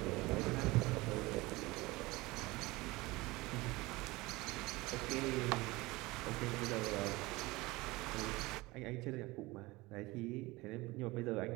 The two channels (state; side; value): quieter; left; 21.6 dB